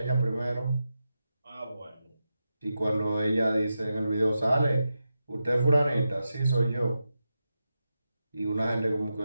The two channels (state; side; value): inverted; both; correlation -0.90